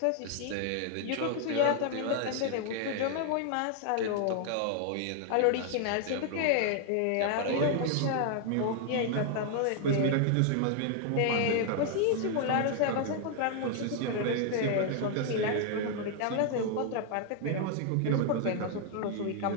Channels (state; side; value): different; both; correlation 0.00